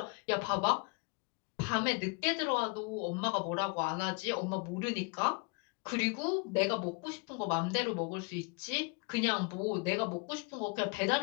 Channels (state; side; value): quieter; right; 32.1 dB